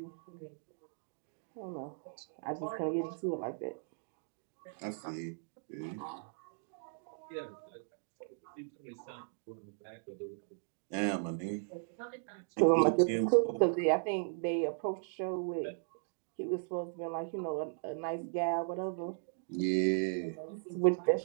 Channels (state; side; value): silent; left; digital silence